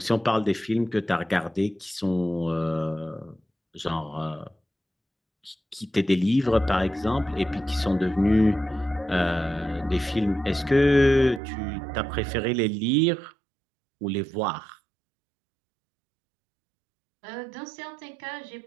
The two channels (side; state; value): left; drops out; at 11.4 s